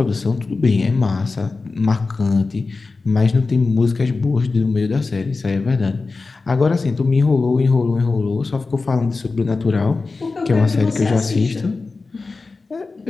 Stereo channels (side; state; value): right; quieter; 3.9 dB